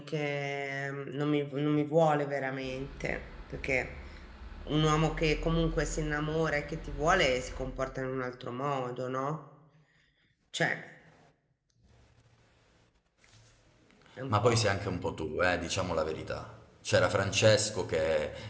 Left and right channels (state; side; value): identical; both; correlation 1.00